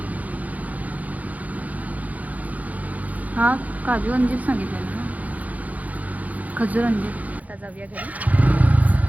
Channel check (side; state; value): left; late; 0.075 ms